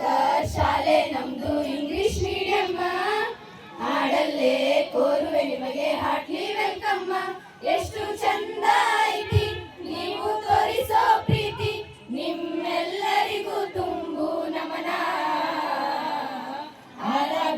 ಶಾಲೆ ನಮ್ದು ಇಂಗ್ಲಿಷ್ ಮೀಡಿಯಂ. ಹಾಡಲ್ಲೇ ಕೋರುವೆ ನಿಮಗೆ ಹಾರ್ಟ್ಲಿ ವೆಲ್ಕಮ್. ಎಷ್ಟು ಚಂದ ಐತಿ ನೀವು ತೋರಿಸೋ ಪ್ರೀತಿ, ನಿಮ್ಮೆಲ್ಲರಿಗೂ ತುಂಬು ನಮನ.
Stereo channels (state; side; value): identical; both; correlation 1.00